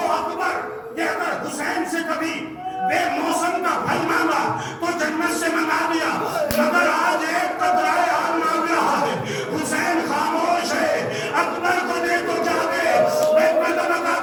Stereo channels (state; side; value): identical; both; correlation 1.00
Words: اکبر کہ اگر حسین سے کبھی بے موسم کا پھل مانگا تو جنت سے منگا دیا, مگر آج ایک قطرہ آب مانگ رہا ہے. حسین خاموش ہے, اکبر کو دے تو جاوے. میں مطلب کا